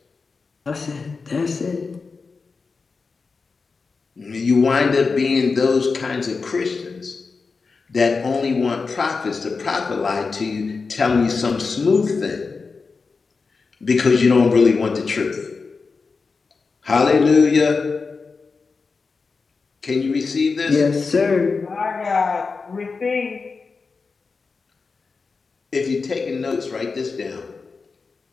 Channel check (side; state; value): right; quieter; 4.6 dB